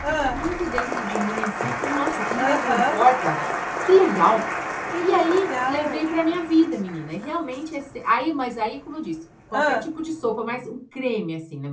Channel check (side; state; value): both; identical; correlation 1.00